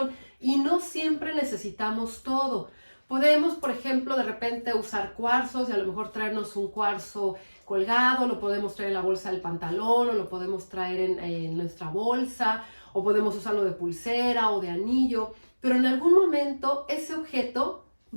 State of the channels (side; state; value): both; inverted; correlation -1.00